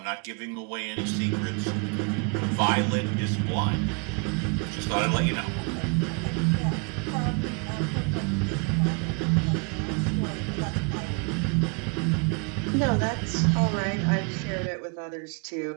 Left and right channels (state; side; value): quieter; left; 34.8 dB